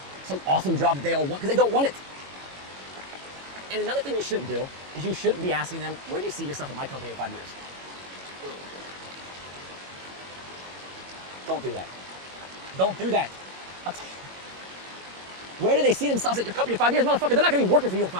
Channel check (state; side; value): late; left; 21 ms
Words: awesome job that they all want, because they don't want it. And another thing you shouldn't do is you shouldn't be asking them, where do you see yourself at my company in 5 years? Don't do that. Don't do that. Where do they see themselves at your company in 5 years? Motherfucker, they're not going to be working for you in